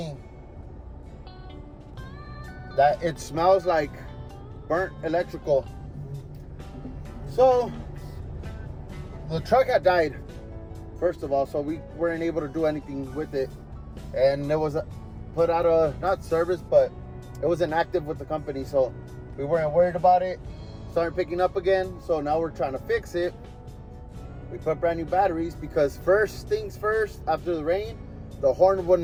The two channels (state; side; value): identical; both; correlation 1.00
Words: that it smells like burnt electrical. So the truck had died, first of all, so we weren't able to do anything with it, and it was put out of, not service, but it was inactive with the company, so we weren't worried about it. Started picking up again, so now we're trying to fix it. We put brand new batteries because first things first, after the rain, the horn